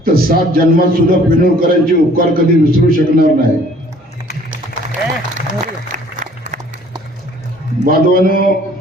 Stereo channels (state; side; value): normal; both; correlation 0.55